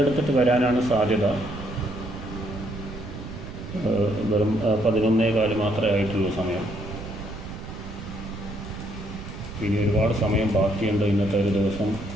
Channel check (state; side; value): noise; right; rumble, 10 dB below the sound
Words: വരാനാണ് സാധ്യത. വെറും 11:15 മാത്രമേ ആയിട്ടുള്ളൂ സമയം. ഇനി ഒരുപാട് സമയം ബാക്കിയുണ്ട് ഇന്നത്തെ ഒരു ദിവസം